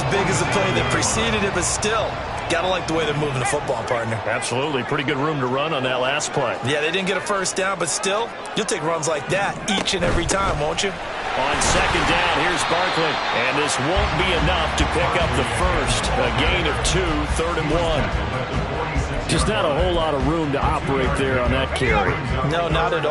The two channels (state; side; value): identical; both; correlation 1.00